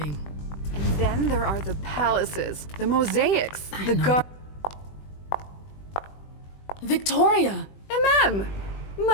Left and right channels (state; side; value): late; right; 20 ms